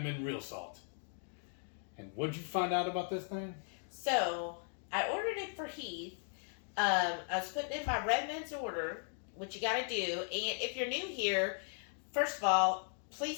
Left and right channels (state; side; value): silent; right; 53 dB below the other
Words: Real Salt. And what'd you find out about this thing? So, I ordered it for Heath. I was putting in my Redmonds order, which you gotta do. And if you're new here, first of all,